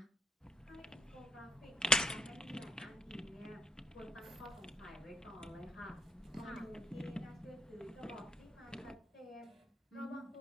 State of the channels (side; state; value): both; normal; correlation 0.69